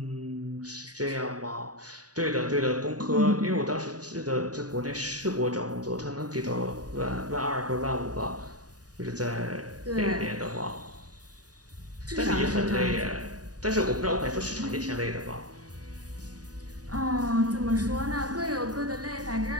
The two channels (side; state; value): left; late; 0.68 ms